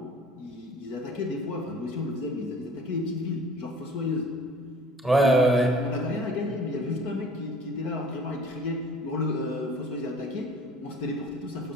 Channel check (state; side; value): normal; both; correlation 0.49